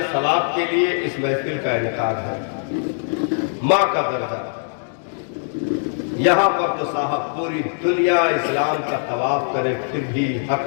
ثواب کے لیے اس محفل کا انعقاد ہے۔ ماں کا درجہ یہاں پر تو صاحب پوری دنیا اسلام کا طواف کرے پھر بھی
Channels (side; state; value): right; silent; digital silence